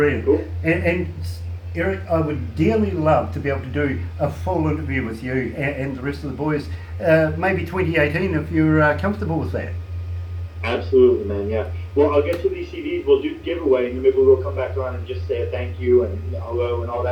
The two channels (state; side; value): identical; both; correlation 1.00